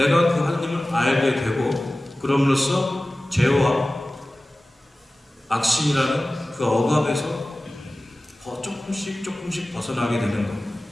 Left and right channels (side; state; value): both; normal; correlation 0.96